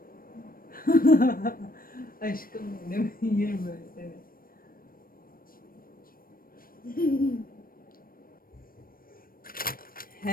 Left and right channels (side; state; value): right; late; 0.41 ms